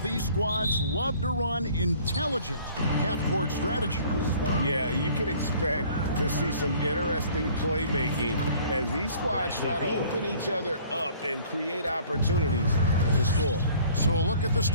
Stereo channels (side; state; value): both; inverted; correlation -0.53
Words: these squads love to run intelligent half-court strategy. Yeah, you can expect to see some interesting playmaking as these squads try to open each other up and create opportunities to score. So a look at the